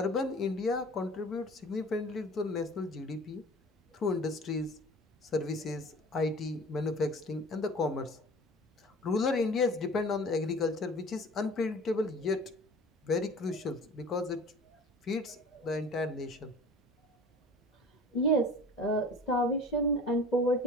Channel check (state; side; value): normal; both; correlation 0.43